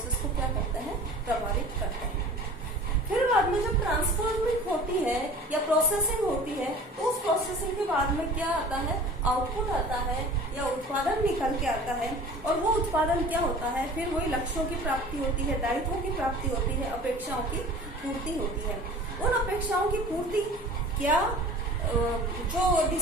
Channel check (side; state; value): both; normal; correlation 0.42